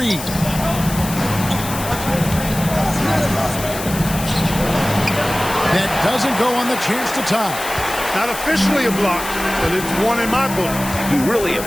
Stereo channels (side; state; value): left; noise; hiss, 9 dB below the sound